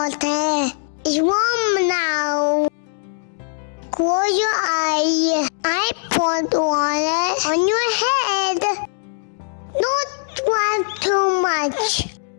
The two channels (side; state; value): right; silent; digital silence